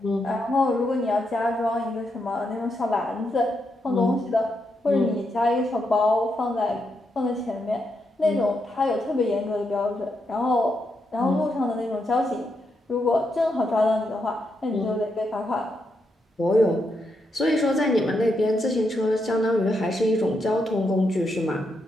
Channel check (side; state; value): both; normal; correlation 0.82